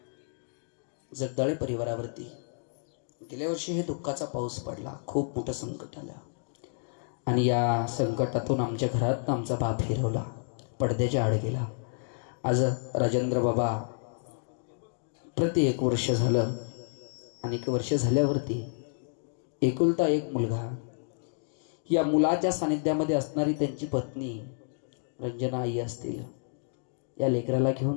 जगदाळे परिवारावरती गेल्या वर्षी हे दुःखाचा पाऊस पडला. खूप मोठं संकट आलं आणि या संकटातून आमच्या घरात आमचा बाप फिरवला, पडद्याच्या आड गेला. आज राजेंद्र बाबा प्रति 1 वर्ष झालं आणि 1 वर्ष झाल्यावरती एकुलता एक मुलगा, या मुलाच्या सानिध्यामध्ये असणारी त्यांची पत्नी रंजना आई असतील, या लेकराला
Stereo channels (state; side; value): silent; right; digital silence